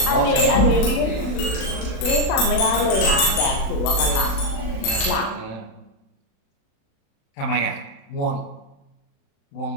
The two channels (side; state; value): right; late; 36 ms